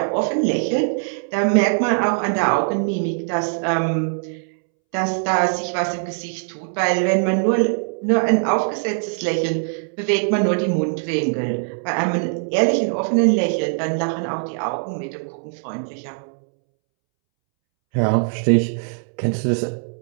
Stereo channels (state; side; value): silent; left; 65 dB below the other